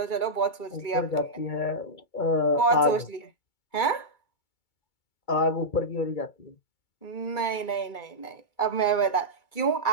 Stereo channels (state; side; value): late; right; 2.3 ms